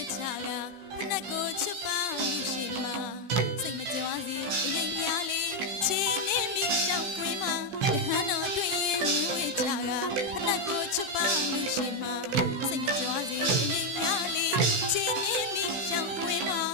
ချကဖနက်ကိုချစ်ပါလို့ရှိမှာစိတ်မကြွားစီအရင်များလေးချီနေမိရှောက်ကွင်းမှာယဟန်တော်တွေ့ရင်ဝချကဖနက်ကိုချစ်ပါလို့ရှိမှာစိတ်မကြွားစီအရင်များလေးချီနေမိရှောက်ကွင်းမှာ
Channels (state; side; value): late; left; 16 ms